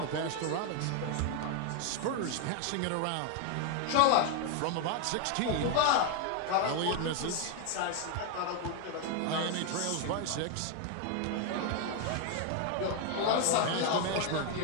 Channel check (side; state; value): both; different; correlation 0.01